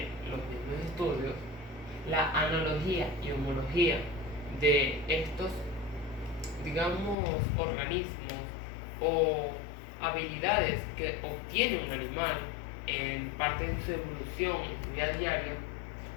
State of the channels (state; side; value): drops out; right; at 7.2 s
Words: los mismos estudios, la analogía y homología de estos, digamos, organismos o habilidades que obtiene un animal en parte de su evolución en su vida diaria,